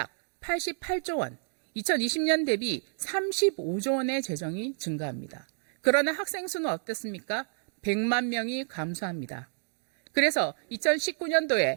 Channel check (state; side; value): silent; left; digital silence